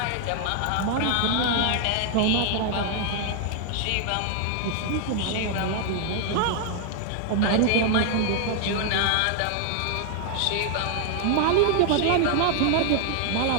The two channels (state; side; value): different; both; correlation 0.00